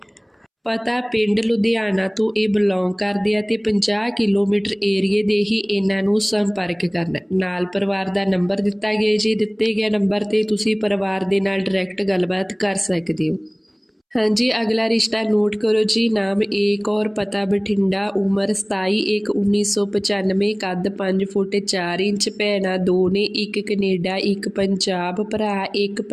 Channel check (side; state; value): both; identical; correlation 1.00